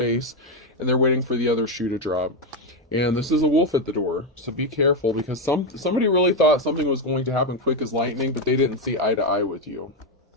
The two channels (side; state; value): both; normal; correlation 0.06